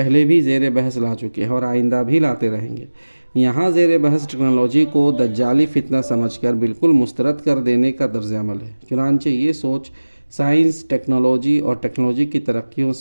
بھی زیر بحث لا چکے ہیں اور آئندہ بھی لاتے رہیں گے۔ یہاں زیر بحث ٹیکنالوجی کو دجالی فتنہ سمجھ کر بالکل مسترد کر دینے کا طرز عمل ہے۔ چنانچہ یہ سوچ سائنس، ٹیکنالوجی اور ٹیکنالوجی کی ترقیوں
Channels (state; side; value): inverted; both; correlation -1.00